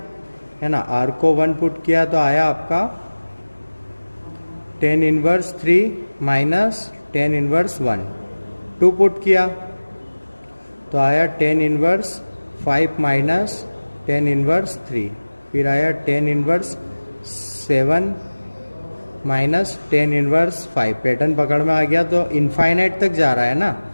है ना, R को 1 पुट किया तो आया आपका tan inverse 3 minus tan inverse 1। 2 put किया तो आया tan inverse 5 minus tan inverse 3। फिर आया tan inverse 7 minus tan inverse 5। Pattern पकड़ में आ गया। तो इनफाइनाइट तक जा रहा है ना,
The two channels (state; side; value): inverted; both; correlation -1.00